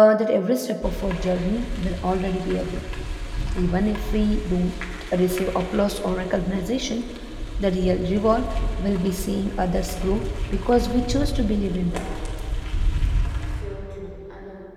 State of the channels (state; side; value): identical; both; correlation 1.00